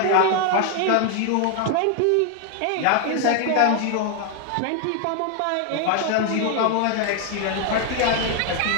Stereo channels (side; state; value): both; different; correlation 0.00